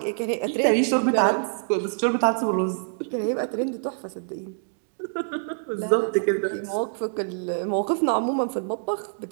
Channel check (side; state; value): left; silent; digital silence